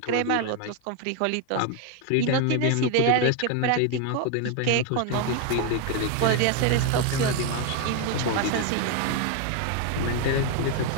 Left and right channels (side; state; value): both; different; correlation 0.01